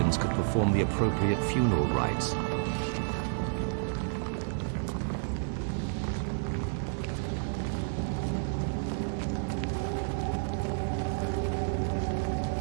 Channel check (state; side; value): silent; left; digital silence